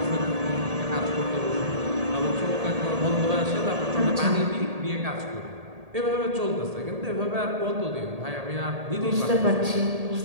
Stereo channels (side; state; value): left; late; 1.8 ms